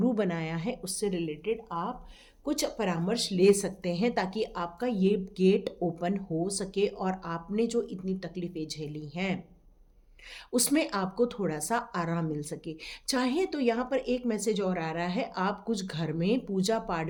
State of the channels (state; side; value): identical; both; correlation 1.00